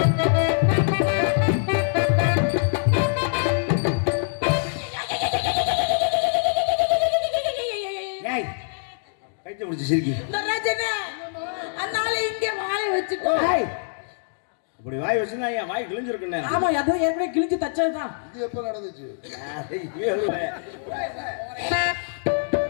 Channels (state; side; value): silent; right; digital silence